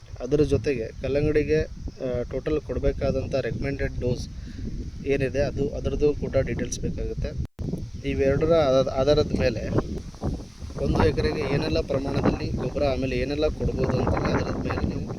ಅದರ ಜೊತೆಗೆ ಕಲ್ಲಂಗಡಿಗೆ ಟೋಟಲ್ ಕೊಡಬೇಕಾದಂಥ ರೆಕಮೆಂಡೆಡ್ ಡೋಸ್ ಏನಿದೆ ಅದರದ್ದು ಕೂಡ ಡೀಟೇಲ್ಸ್ ಬೇಕಾಗುತ್ತೆ. ಇವೆರಡರ ಆಧಾರದ ಮೇಲೆ 1 ಎಕರೆಗೆ ಏನೆಲ್ಲ ಪ್ರಮಾಣದಲ್ಲಿ ಗೊಬ್ಬರ ಆಮೇಲೆ ಏನೆಲ್ಲ ಕೊಡ್ಬೋದು ಅಂತೇಳಿ ಅದರ ಮೇಲೆ ನೀವು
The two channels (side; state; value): both; identical; correlation 1.00